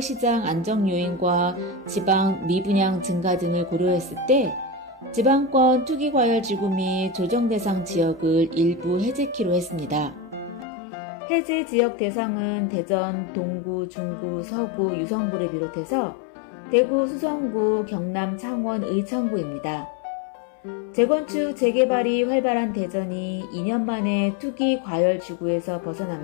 안정 요인과 지방 미분양 증가 등을 고려했을 때 지방권 투기과열지구 및 조정대상 지역을 일부 해제키로 했습니다. 해제 지역 대상은 대전, 동구, 중구, 서구, 유성구를 비롯해서 대구, 수성구, 경남, 창원, 의창구입니다. 재건축, 재개발이 활발한 대전이 2년 만에 투기 과열 지구에서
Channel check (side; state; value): right; drops out; at 10.7 s